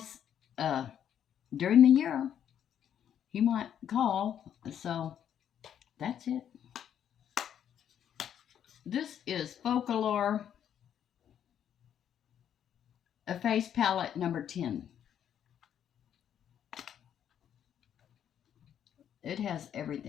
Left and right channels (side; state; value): right; quieter; 9.5 dB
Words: uh, during the year he might call. So that's it. This is Folklore, a face palette number 10. It has